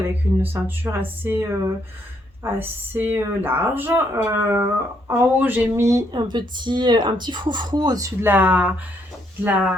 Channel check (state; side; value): normal; both; correlation 0.73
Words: une ceinture assez large. En haut j'ai mis un petit froufrou au-dessus de la